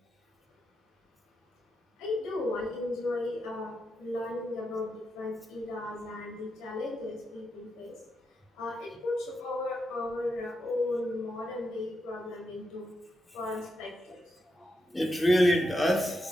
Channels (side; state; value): both; normal; correlation 0.85